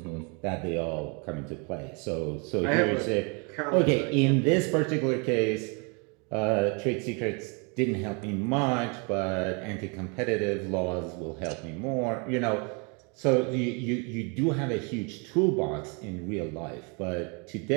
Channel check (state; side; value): quieter; left; 33.7 dB